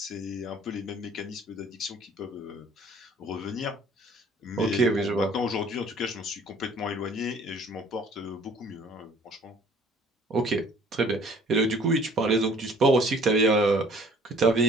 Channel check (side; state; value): both; normal; correlation 0.54